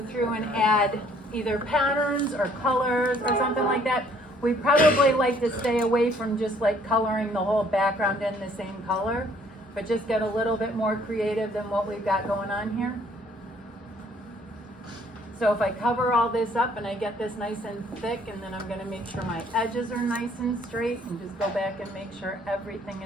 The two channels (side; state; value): both; normal; correlation 0.61